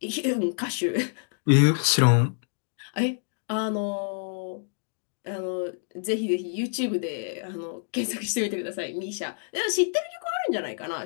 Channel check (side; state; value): right; silent; digital silence